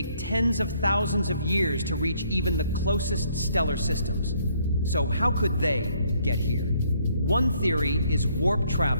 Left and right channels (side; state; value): both; inverted; correlation -0.67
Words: tens of thousands of years to reach even the closest stellar systems. So how could they get here? One theory is warp